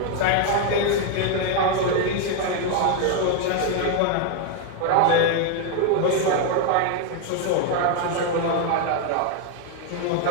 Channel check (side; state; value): both; different; correlation 0.01